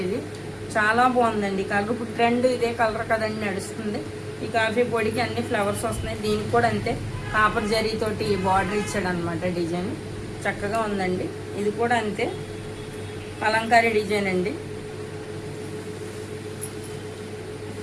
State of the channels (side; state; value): both; identical; correlation 1.00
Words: ఇది చాలా బాగుందండి కలర్. ఇప్పుడు ట్రెండ్ ఇదే కలర్ కదండి నడుస్తుంది. ఈ కాఫీ పొడికి అన్ని ఫ్లవర్స్ వస్తున్నాయి. దీనికి కూడా అంతే, కాపర్ జరీతోటి బార్డర్ ఇచ్చాడు అనమాట. డిజైన్ చక్కగా ఉందండి. ఇది కూడా అంతే, కలంకారీ డిజైన్ అండి.